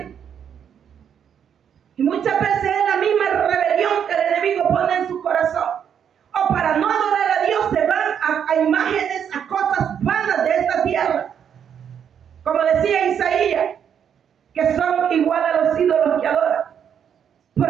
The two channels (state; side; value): quieter; left; 8.3 dB